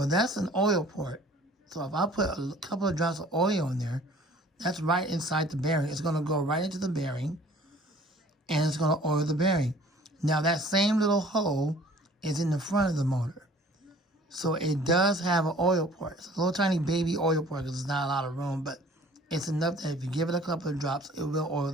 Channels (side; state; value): both; normal; correlation 0.51